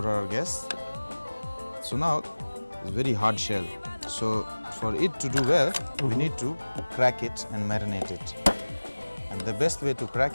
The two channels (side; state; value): both; inverted; correlation -1.00